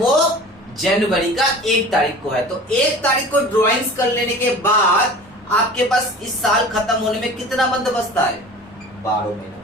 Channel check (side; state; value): both; normal; correlation 0.40